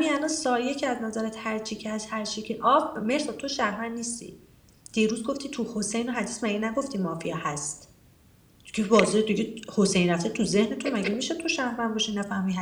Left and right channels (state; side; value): identical; both; correlation 1.00